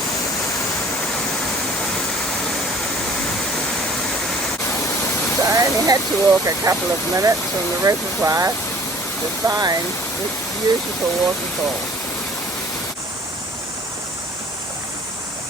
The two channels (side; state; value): both; normal; correlation 0.51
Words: had to walk a couple of minutes from the reservoir to find this beautiful waterfall.